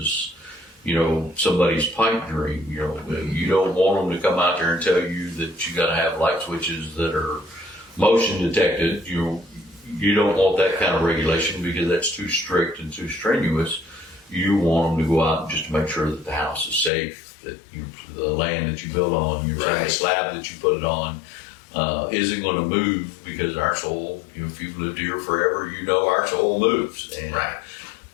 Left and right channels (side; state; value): right; drops out; at 16.9 s